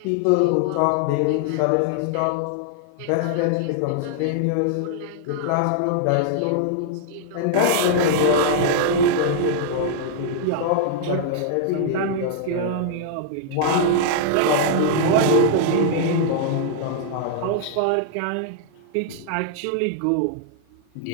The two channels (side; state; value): both; different; correlation -0.01